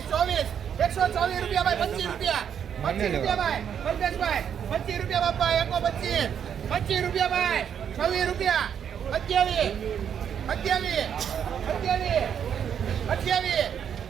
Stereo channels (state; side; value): quieter; left; 8.3 dB